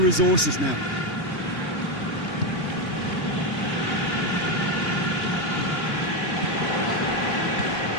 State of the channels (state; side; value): late; right; 3.2 ms